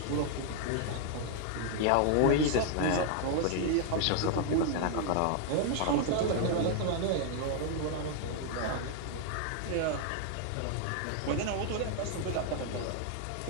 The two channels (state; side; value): different; both; correlation 0.00